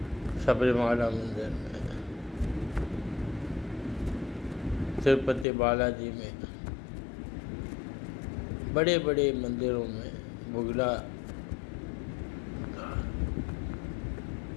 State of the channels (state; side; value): drops out; right; at 5.5 s